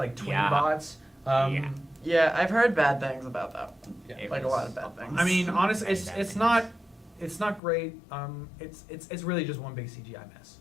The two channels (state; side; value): drops out; right; at 7.6 s